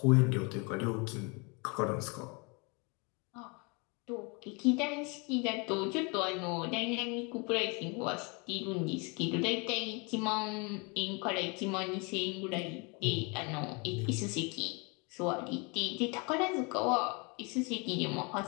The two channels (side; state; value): right; quieter; 30.9 dB